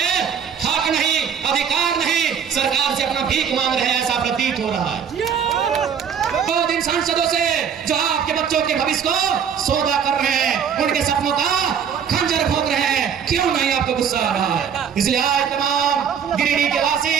हक नहीं, अधिकार नहीं, सरकार से अपना भीख मांग रहे हैं, ऐसा प्रतीत हो रहा है। 2 दिन सांसदों से जो आपके बच्चों के भविष्य को सौदा कर रहे हैं, उनके सपनों का खंजर भोग रहे हैं, क्यों नहीं आपको गुस्सा आ रहा है? इसलिए आज तमाम गिरिडीह के वासी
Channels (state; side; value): quieter; left; 7.6 dB